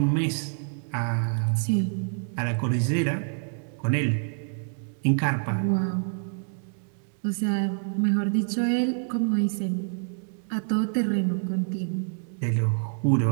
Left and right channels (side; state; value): left; silent; 59 dB below the other